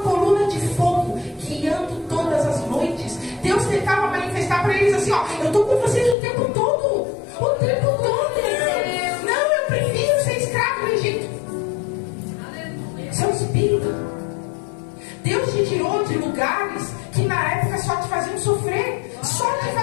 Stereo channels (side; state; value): right; drops out; at 6.2 s